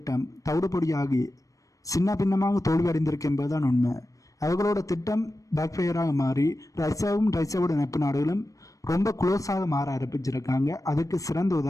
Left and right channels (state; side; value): late; right; 0.16 ms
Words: தவிடுபொடியாகி சின்ன பின்னமாக தோல்வி அடைந்திருக்கு என்பதுதான் உண்மை. அவர்களோட திட்டம் பேக்ஃபயராக மாறி ரஷ்யாவோட நட்பு நாடுகளும் ரொம்ப க்ளோஸாக மாற ஆரம்பிச்சிருக்காங்க. அதுக்கு சிறந்த